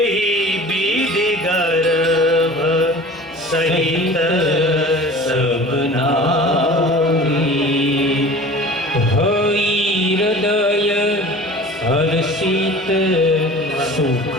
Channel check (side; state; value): both; normal; correlation 0.42